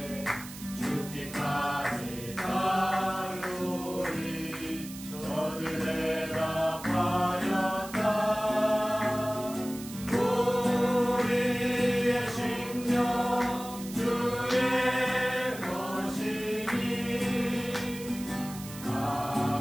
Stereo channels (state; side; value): noise; right; hiss, 14 dB below the sound